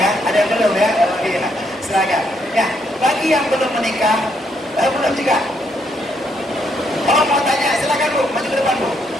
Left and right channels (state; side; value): normal; both; correlation 0.74